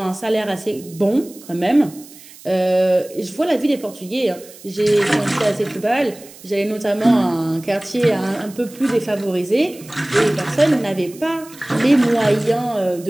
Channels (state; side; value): noise; right; hiss, 20 dB below the sound